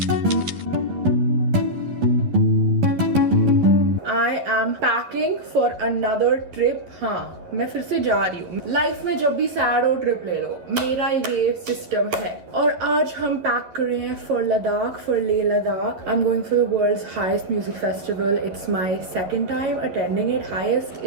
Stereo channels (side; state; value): left; late; 11 ms